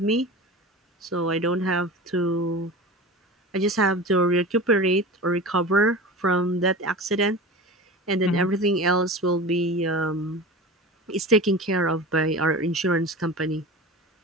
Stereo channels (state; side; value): normal; both; correlation 0.32